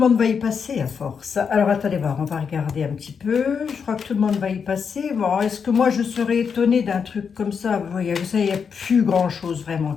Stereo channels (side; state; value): right; quieter; 6.4 dB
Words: va y passer à force. Alors attendez voir, on va regarder un petit peu. Je crois que tout le monde va y passer. Bon, est-ce que moi je serais étonnée d'un truc comme ça? Vous voyez, ça, il n'y a plus grand chose vraiment